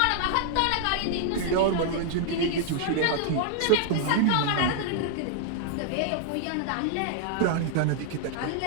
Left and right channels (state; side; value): different; both; correlation 0.00